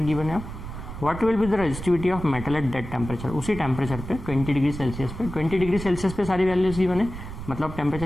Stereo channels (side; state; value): right; noise; rumble, 10 dB below the sound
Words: है। What will be the resistivity of metal at that temperature, उसी टेम्परेचर पे 20 डिग्री सेल्सियस पे, 20 डिग्री सेल्सियस पे सारी वैल्यूज गिवन है, मतलब टेम्परेचर